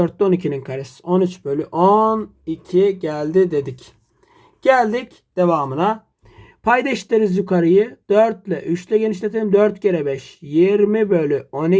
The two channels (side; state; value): both; identical; correlation 1.00